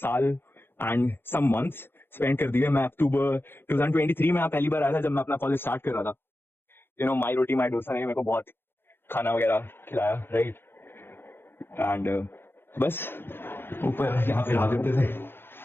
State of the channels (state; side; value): late; right; 0.10 ms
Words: and some months spend कर दिए. मैं अक्टूबर 2023 में पहली बार आया था जब मैं अपना कॉलेज स्टार्ट कर रहा था. My routine, my dosa ने मेरे को बहुत खाना वगैरह खिलाया, right? And बस ऊपर यहाँ पे रह जाते थे.